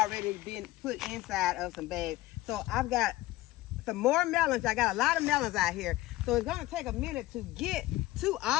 been put inside of some bags. So I've got some more melons. I got a lot of melons out here. So it's going to take a minute to get to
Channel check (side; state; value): right; quieter; 17.3 dB